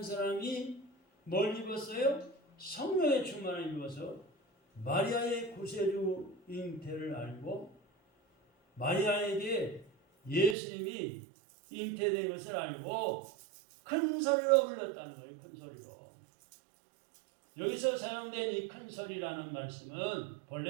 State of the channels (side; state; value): left; drops out; at 10.6 s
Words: 사람이 뭘 입었어요? 성령의 충만을 입어서 마리아의 구세주 잉태를 알고 마리아에게 예수님이 잉태된 것을 알고 큰 소리로 불렀다는 거예요. 큰 소리로. 여기서 사용된 이 큰 소리라는 말씀은